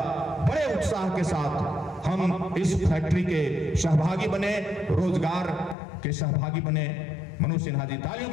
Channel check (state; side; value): drops out; right; at 5.8 s